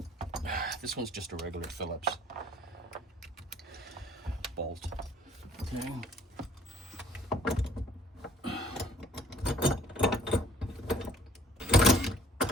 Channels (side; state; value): both; normal; correlation 0.56